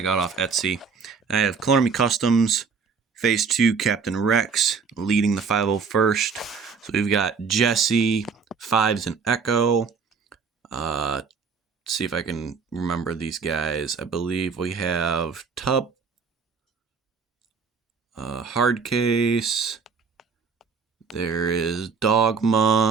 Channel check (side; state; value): left; quieter; 5.5 dB